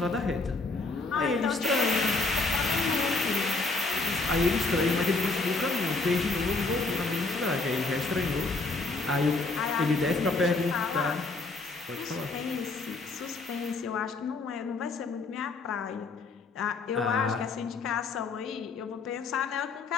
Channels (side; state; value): right; quieter; 3.6 dB